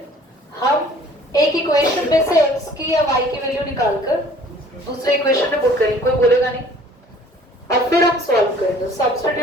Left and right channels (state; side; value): normal; both; correlation 0.52